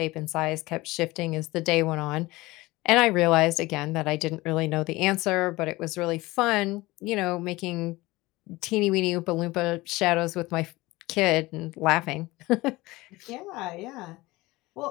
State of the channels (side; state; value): right; quieter; 20.4 dB